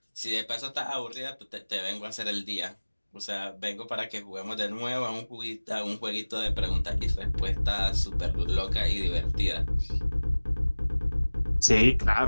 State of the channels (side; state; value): both; inverted; correlation -1.00